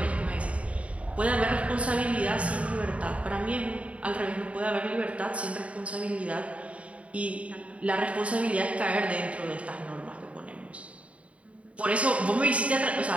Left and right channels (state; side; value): late; left; 0.064 ms